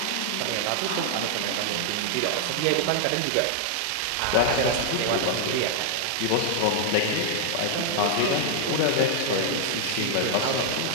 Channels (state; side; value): different; both; correlation 0.00